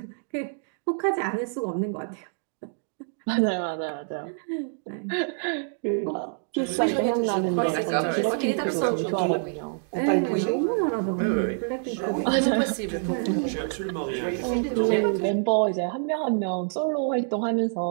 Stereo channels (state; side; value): silent; left; digital silence